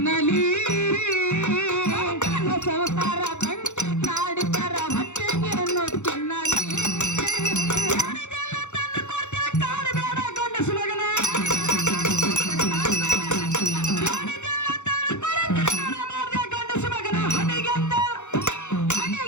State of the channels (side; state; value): right; late; 0.83 ms